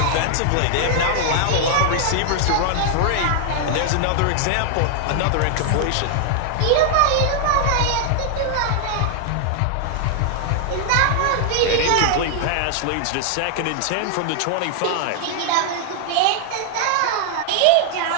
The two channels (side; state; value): both; different; correlation -0.01